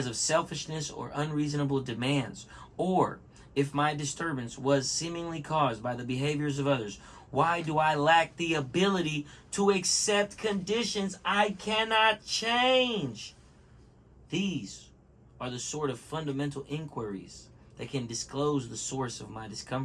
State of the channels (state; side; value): identical; both; correlation 1.00